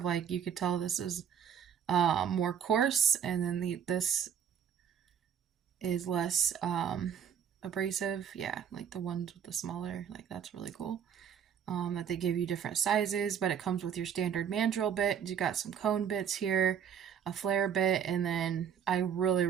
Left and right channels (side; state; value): left; quieter; 8.2 dB